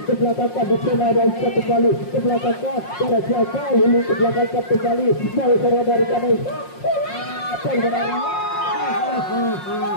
ke belakang di sana dan bisa kembali ke belakang ada siapa Lili ke belakang kembali dari sana dari Nesa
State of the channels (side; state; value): right; late; 5.6 ms